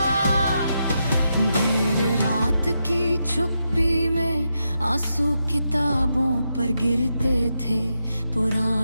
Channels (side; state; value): both; inverted; correlation -0.85